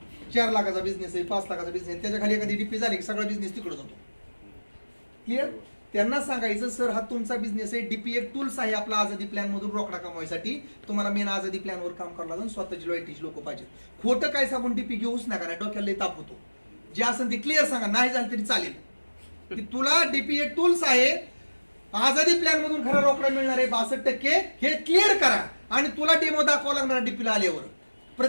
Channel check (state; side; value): inverted; both; correlation -1.00